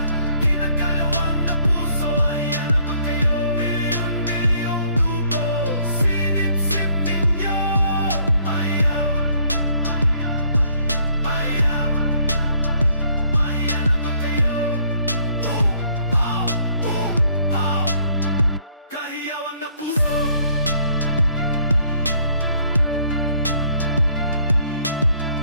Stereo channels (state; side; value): inverted; both; correlation -0.65